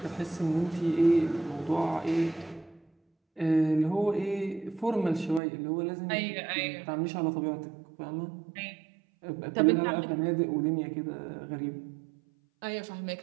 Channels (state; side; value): drops out; left; at 5.4 s